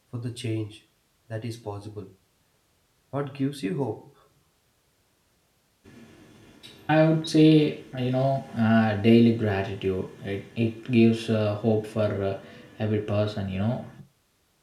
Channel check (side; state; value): both; identical; correlation 1.00